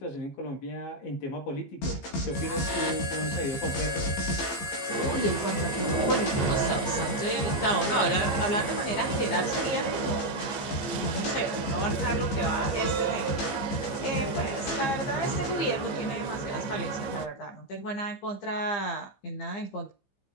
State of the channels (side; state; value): right; late; 15 ms